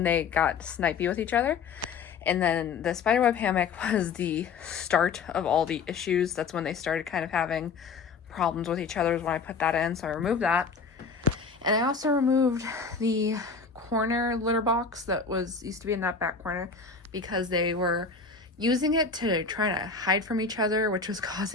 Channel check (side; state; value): right; quieter; 5.1 dB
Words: they got snipey with each other. And then the spiderweb hammock was the start of all the issues. That's when they started kind of having problems with each other is when I put that in. So I removed that. And I also removed the corner litter box that used to be in that back corner because they were using it to try to hide from each other, which was